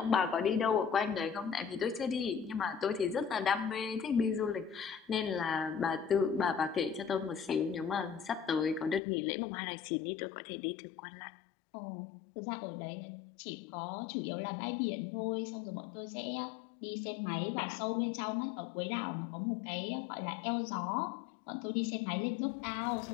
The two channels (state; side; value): drops out; right; at 9.0 s